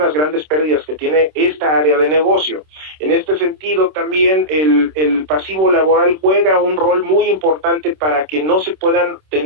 grandes pérdidas que tiene esta área de negocio. En este sentido, también el pasivo laboral juega un rol muy importante para que no se puedan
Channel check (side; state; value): left; late; 26 ms